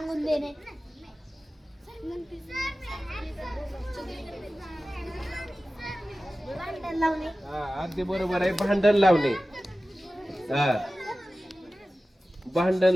देणे. भांडण लावणे. अगदी बरोबर आहे. भांडण लावणे. भांडण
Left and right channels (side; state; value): both; normal; correlation 0.96